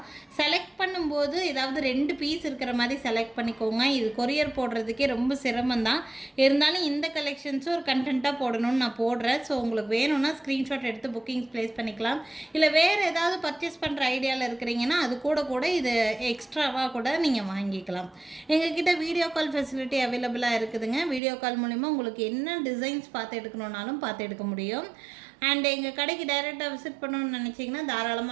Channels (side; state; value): left; drops out; at 21.2 s